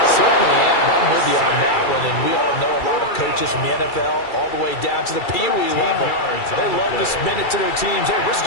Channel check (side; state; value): right; late; 2.3 ms